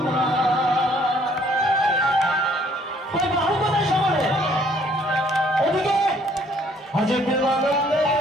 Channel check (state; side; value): normal; both; correlation 0.62